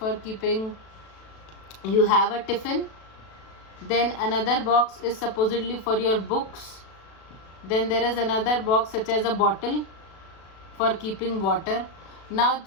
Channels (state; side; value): late; right; 37 ms